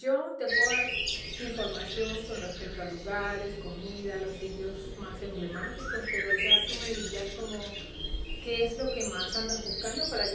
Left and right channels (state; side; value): identical; both; correlation 1.00